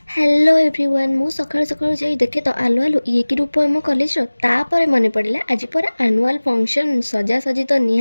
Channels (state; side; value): inverted; both; correlation -1.00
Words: Hello everyone मु सकाळु सकाळु जाई देखे तो आलु आलु ये कि रूप आम कॉलेज रो तापर मने पड़िला आज पर एनुअल फंक्शन सजा सजी तो